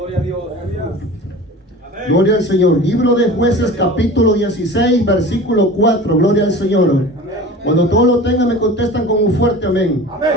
a Dios. Gloria al Señor. Libro de Jueces, capítulo 16, versículo 4. Gloria al Señor. Cuando todos lo tengan, me contestan con un fuerte amén.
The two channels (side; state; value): both; normal; correlation 0.37